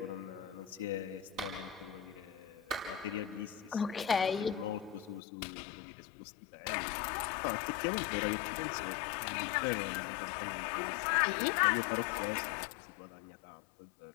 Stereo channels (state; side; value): drops out; right; at 5.2 s